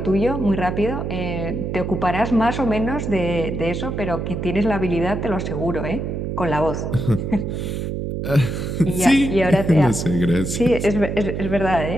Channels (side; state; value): right; noise; hum, 3 dB below the sound